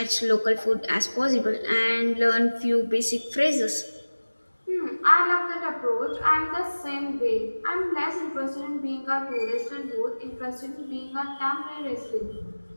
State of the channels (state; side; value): inverted; both; correlation -1.00